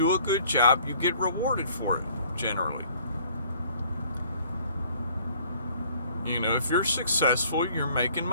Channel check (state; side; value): inverted; both; correlation -0.57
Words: a good job, you get rewarded for it, generally. You know, if you're successful, you're making